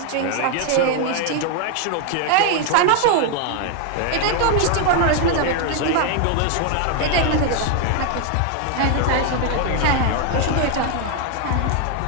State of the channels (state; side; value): different; both; correlation 0.01